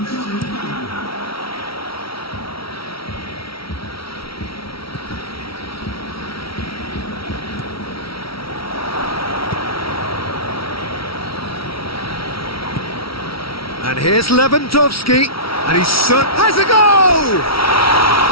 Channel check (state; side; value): late; right; 0.75 ms